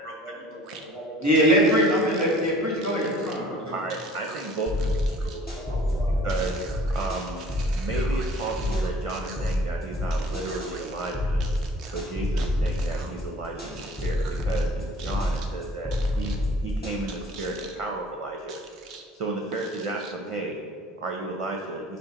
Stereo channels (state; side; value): normal; both; correlation 0.50